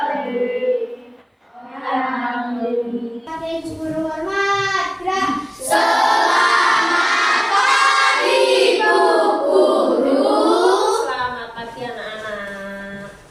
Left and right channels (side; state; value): both; identical; correlation 1.00